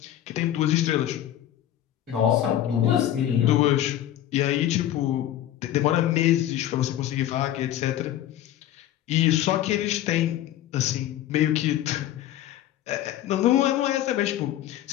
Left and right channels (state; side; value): quieter; right; 12.4 dB